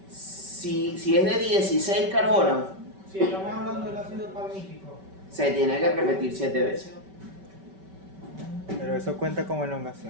si es de 16 carbonos, Si estamos hablando del ácido palmítico. se tiene que repetir 7 veces. Pero eso cuenta como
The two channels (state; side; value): late; left; 5.2 ms